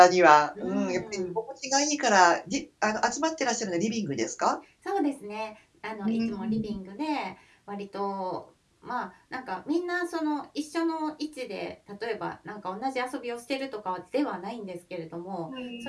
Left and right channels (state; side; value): identical; both; correlation 1.00